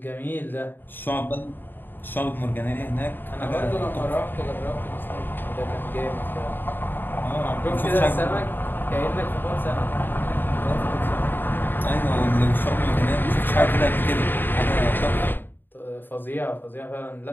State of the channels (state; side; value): late; right; 0.094 ms